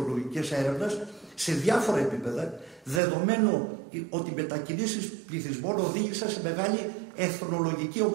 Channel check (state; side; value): drops out; left; at 3.0 s